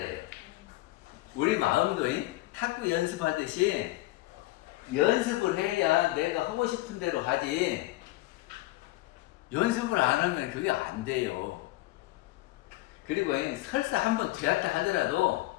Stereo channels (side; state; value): right; quieter; 18.6 dB